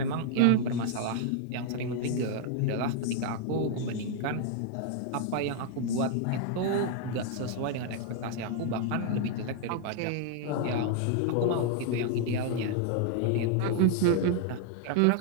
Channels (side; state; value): both; different; correlation 0.00